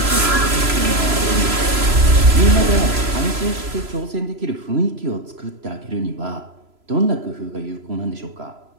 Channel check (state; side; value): late; left; 3.0 ms